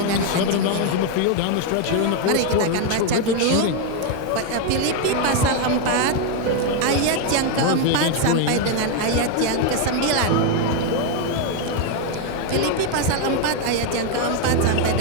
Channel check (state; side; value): different; both; correlation 0.01